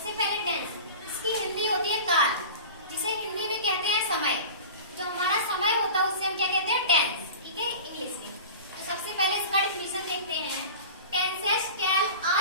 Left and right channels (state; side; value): inverted; both; correlation -0.36